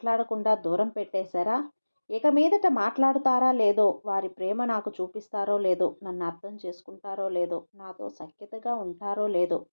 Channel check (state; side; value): inverted; both; correlation -1.00